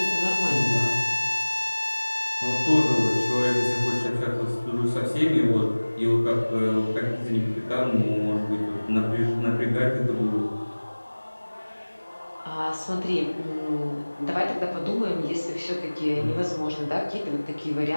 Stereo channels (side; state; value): both; inverted; correlation -1.00